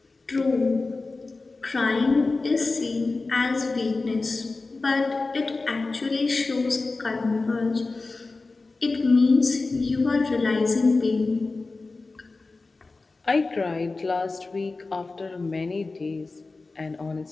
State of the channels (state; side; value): quieter; right; 3.6 dB